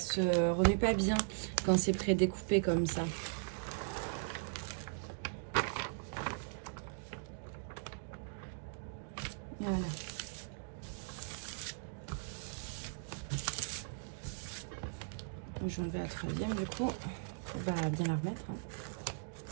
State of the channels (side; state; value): left; silent; digital silence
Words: remue pas bien quand c'est pré-découpé comme ça. Voilà. Je vais enlever la troisième du coup. On va bien la remettre. Hein.